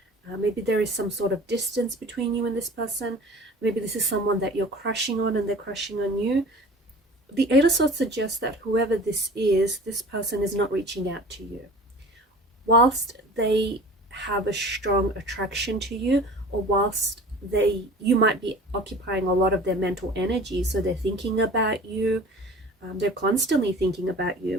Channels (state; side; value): normal; both; correlation 0.42